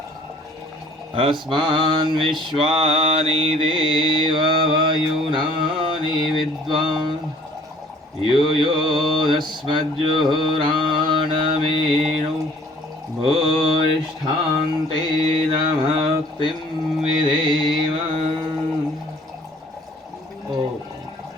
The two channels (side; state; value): both; normal; correlation 0.54